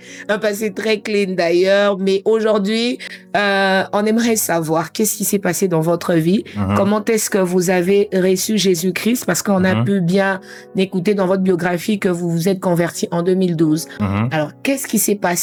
passé très clean d'ailleurs, mais aujourd'hui, on aimerait savoir qu'est-ce qui s'est passé dans votre vie, comment est-ce que vous avez reçu Jésus-Christ, parce qu'on a pu bien écouter dans votre biographie que vous vous êtes converti en 2012. Alors, qu'est-ce qui s'est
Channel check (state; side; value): identical; both; correlation 1.00